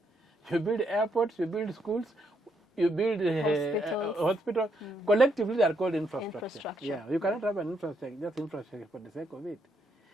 you build airports, you build schools, you build hospitals. Collectively, they are called infrastructure. Yeah, you cannot have an infrastructure, just infrastructure for the sake of it.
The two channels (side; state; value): both; normal; correlation 0.76